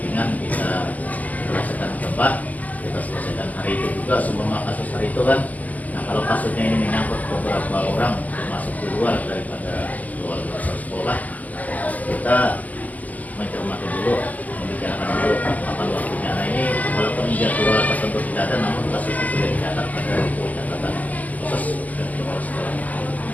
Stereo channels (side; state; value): right; late; 0.077 ms